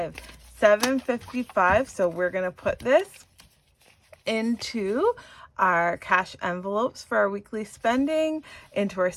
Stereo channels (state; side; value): identical; both; correlation 1.00